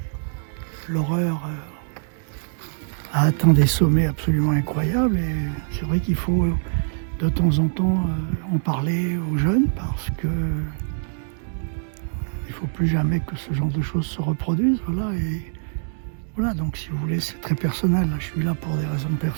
l'horreur a atteint des sommets absolument incroyables. Et c'est vrai qu'il faut de temps en temps en parler aux jeunes parce que il ne faut plus jamais que ce genre de choses se reproduisent. Voilà, et voilà, donc si vous voulez, c'est très personnel. Je suis là pour des raisons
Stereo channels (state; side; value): silent; left; 63 dB below the other